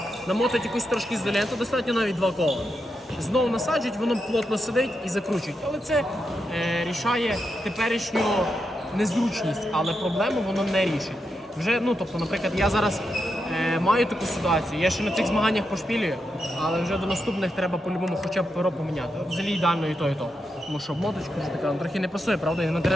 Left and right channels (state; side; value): normal; both; correlation 0.85